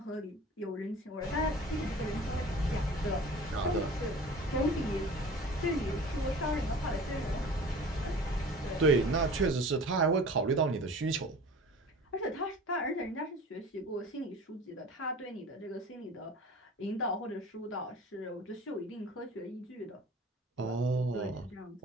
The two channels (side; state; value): both; normal; correlation 0.41